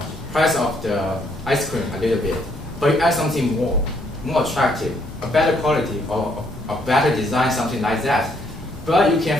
price of the ice cream a little bit, but you add something more attractive, a better quality, or a better design, something like that. But you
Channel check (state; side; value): normal; both; correlation 0.70